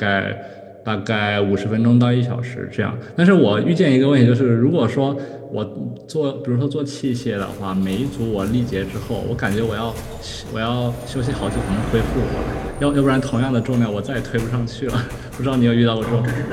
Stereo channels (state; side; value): identical; both; correlation 1.00